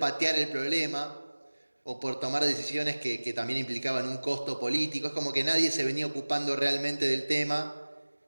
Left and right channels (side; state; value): both; inverted; correlation -1.00